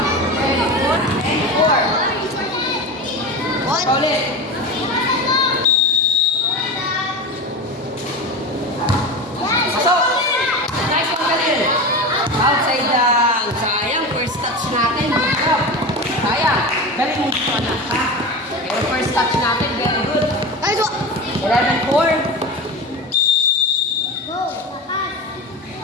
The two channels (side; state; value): both; normal; correlation 0.26